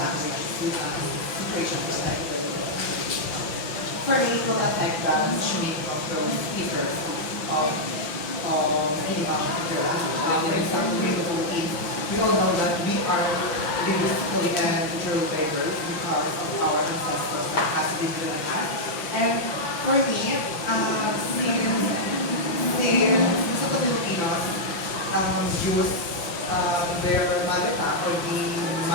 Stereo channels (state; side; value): late; right; 5.9 ms